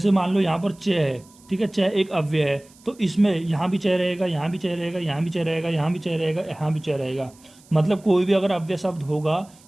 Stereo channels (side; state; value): right; noise; hiss, 27 dB below the sound